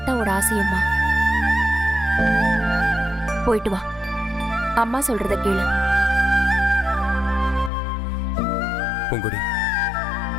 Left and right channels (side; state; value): right; drops out; at 7.7 s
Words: ஆசையும்மா. போயிட்டு வா, அம்மா சொல்றத கேளு. பூங்குடி,